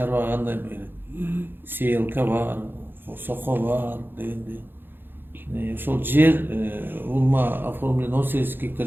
кандай берет? Сейлка бар, сохо бар дегенде. Ошол жер улма оформлен 18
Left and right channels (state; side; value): late; left; 0.099 ms